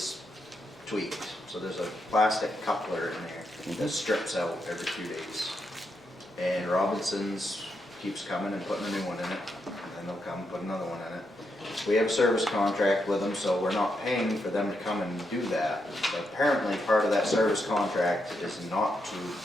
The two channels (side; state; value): both; normal; correlation 0.82